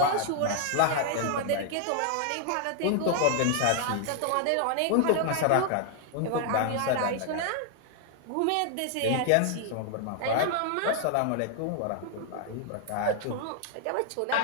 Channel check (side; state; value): both; different; correlation 0.00